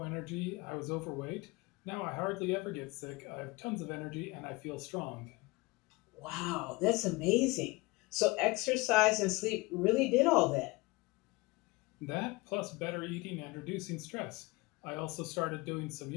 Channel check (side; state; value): right; quieter; 23.7 dB